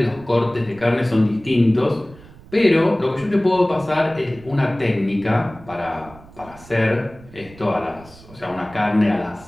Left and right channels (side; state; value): right; noise; rumble, 21 dB below the sound